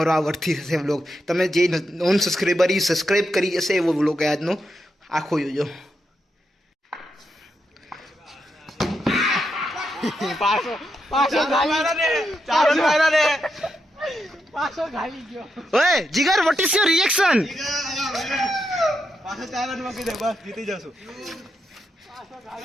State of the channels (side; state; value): both; normal; correlation 0.84